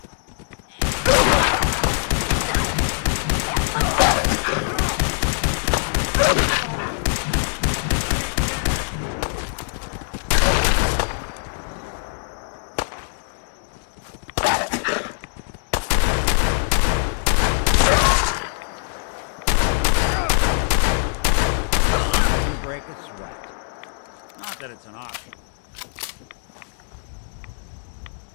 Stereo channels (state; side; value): silent; right; digital silence